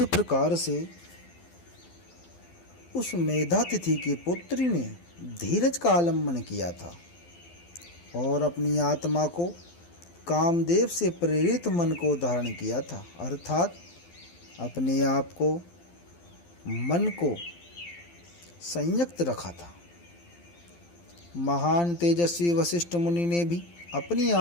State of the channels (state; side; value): late; right; 12 ms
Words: प्रकार से उस मेधातिथि की पुत्री ने धीरज का आलम्बन किया था और अपनी आत्मा को कामदेव से प्रेरित मन को धारण किया था, अर्थात अपने आप को मन को संयक्त रखा था। महान तेजस्वी वशिष्ठ मुनि ने भी अपनी